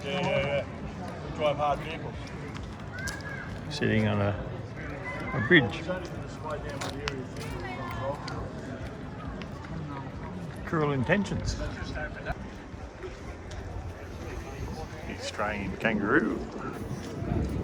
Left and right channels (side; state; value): both; identical; correlation 1.00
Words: Yeah. We drive hard vehicles. Sitting on a bridge. Cruel intentions. Australian kangaroo.